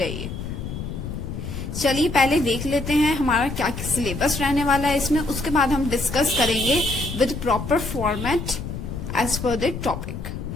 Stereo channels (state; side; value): noise; left; rumble, 7 dB below the sound